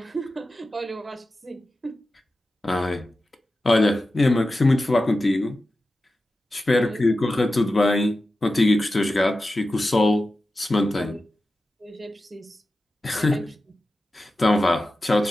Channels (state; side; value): normal; both; correlation 0.93